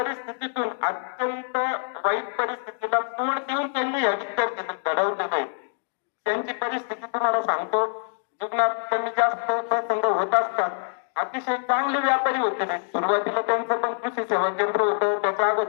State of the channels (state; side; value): silent; right; digital silence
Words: अत्यंत वाईट परिस्थितीला तोंड देऊन त्यांनी या विद्यार्थी घडवले नाही. त्यांची परिस्थिती तुम्हाला सांगतो, जीवनात कमी जास्त प्रसंग होत असतात. अतिशय चांगले व्यापारी होते ते. सुरुवातीला त्यांचं पण कृषी सेवा केंद्र होतं, त्याच्या